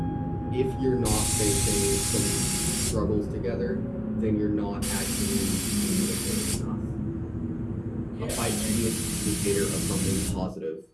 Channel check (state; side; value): identical; both; correlation 1.00